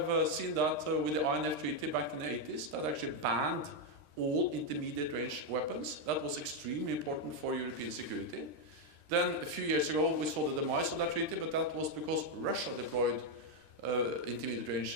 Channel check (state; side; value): late; left; 13 ms